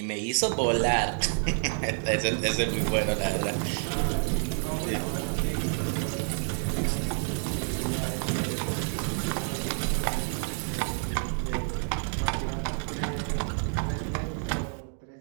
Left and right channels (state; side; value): silent; left; 56 dB below the other